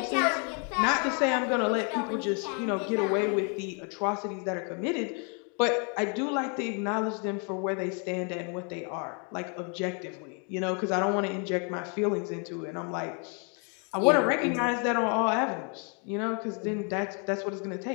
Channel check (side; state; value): right; quieter; 38.0 dB